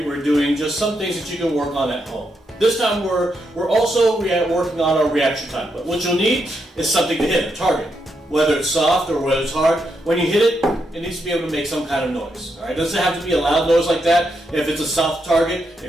doing just some things that you can work on at home. This time we're also working on our reaction time. But what you'll need is something to hit, a target. Whether it's soft or whether it's hard, when you hit it, it needs to be able to make some kind of noise. All right? It doesn't have to be a loud noise like that. If it's a soft target,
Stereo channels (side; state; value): both; normal; correlation 0.81